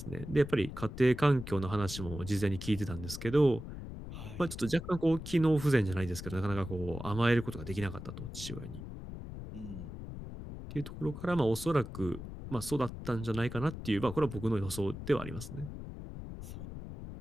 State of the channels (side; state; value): left; noise; rumble, 10 dB below the sound